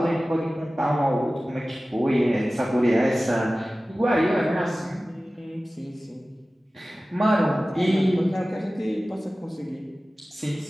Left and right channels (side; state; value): both; normal; correlation 0.96